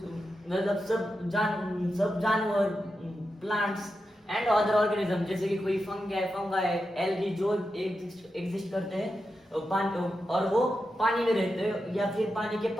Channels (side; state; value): both; normal; correlation 0.89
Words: मतलब सब जानवर, प्लांट्स एंड अदर ऑर्गेनिज्म, जैसे कि कोई फंगाई, एल्गी जो एग्जिस्ट करते हैं पानी, और वो पानी में रहते हैं या फिर पानी के